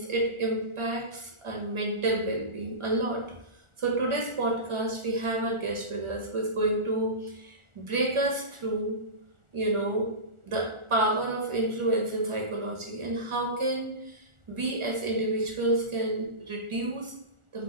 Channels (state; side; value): late; left; 1.4 ms